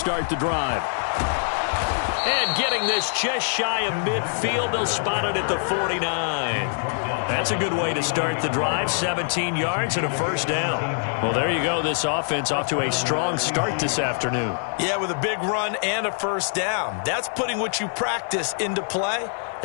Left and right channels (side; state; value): right; silent; 62 dB below the other